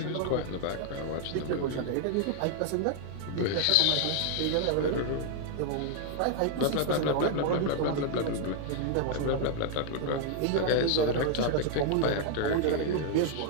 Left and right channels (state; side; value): different; both; correlation 0.00